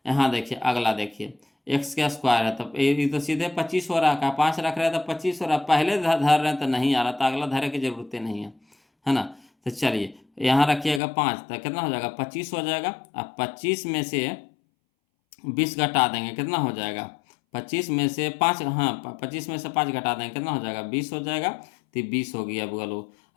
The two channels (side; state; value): right; drops out; at 11.0 s